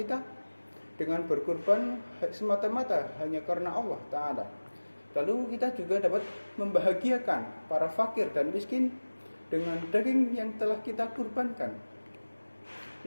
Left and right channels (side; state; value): both; inverted; correlation -1.00